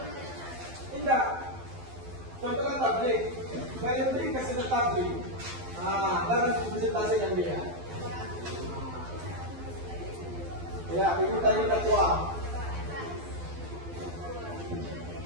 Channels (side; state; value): left; late; 12 ms